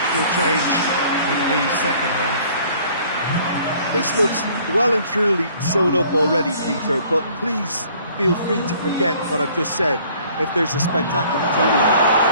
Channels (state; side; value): inverted; both; correlation -0.56